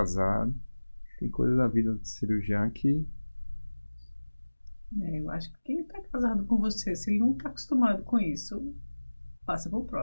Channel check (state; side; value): inverted; both; correlation -1.00